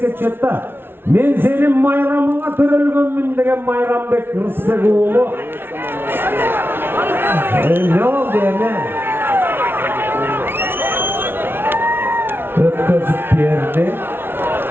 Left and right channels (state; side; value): late; left; 0.11 ms